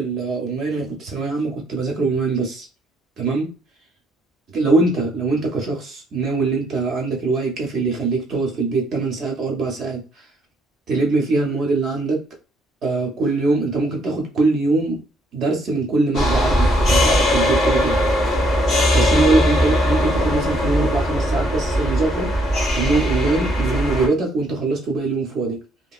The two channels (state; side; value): normal; both; correlation 0.70